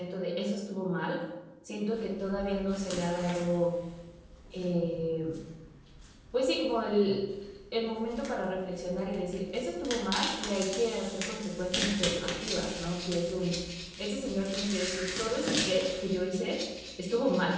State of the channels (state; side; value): identical; both; correlation 1.00